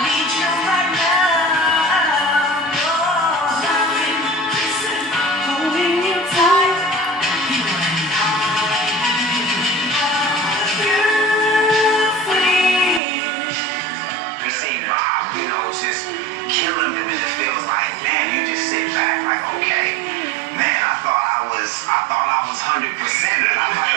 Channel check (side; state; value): left; drops out; at 13.0 s